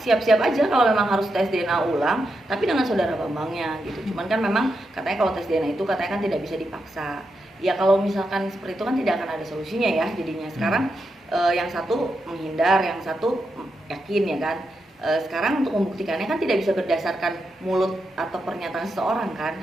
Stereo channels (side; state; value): both; normal; correlation 0.85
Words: aja kalau memang harus tes DNA ulang, tapi dengan Saudara Bambangnya gitu. Cuman kan memang katanya kalau tes DNA itu katanya kan tidak bisa dipaksa. Ya kalau misalkan seperti itu kan tidak akan ada solusinya ya jadinya. Sekarang yang satu menghindar, yang satu yakin ya kan. Sekarang untuk membuktikannya kan tidak bisa berdasarkan mulut atau pernyataan seseorang kan,